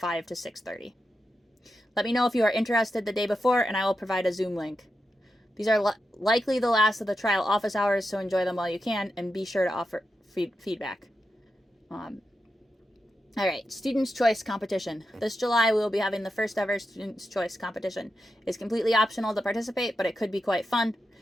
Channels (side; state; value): both; normal; correlation 0.88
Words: to 6:30. Let me know if you are interested the day before, and I will provide a Zoom link. These are likely the last of the trial office hours, so enjoy them while you can, and be sure to offer feedback. All right, Students' Choice Competition. This July, we will be having the first ever Students' Choice Competition. It's completely optional to participate, but it could be quite fun.